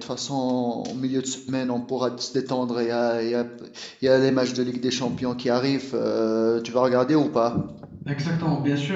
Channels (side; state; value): both; identical; correlation 1.00